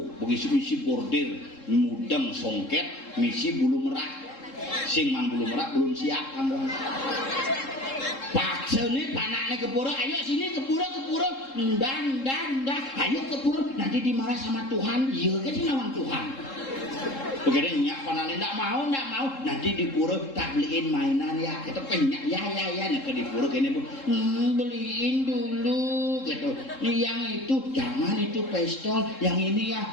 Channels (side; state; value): right; late; 3.7 ms